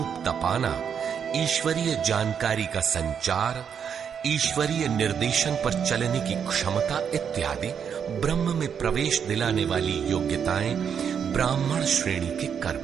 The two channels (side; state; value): left; quieter; 7.5 dB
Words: तपाना, ईश्वरीय जानकारी का संचार, ईश्वरीय निर्देशन पर चलने की क्षमता इत्यादि ब्रह्म में प्रवेश दिलाने वाली योग्यताएं ब्राह्मण श्रेणी के कर्म